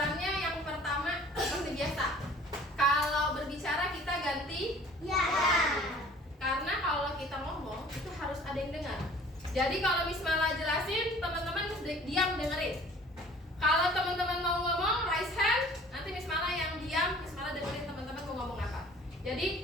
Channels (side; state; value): both; normal; correlation 0.50